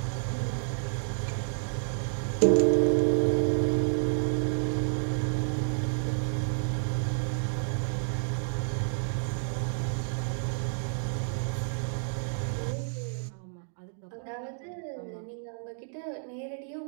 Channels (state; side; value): silent; left; digital silence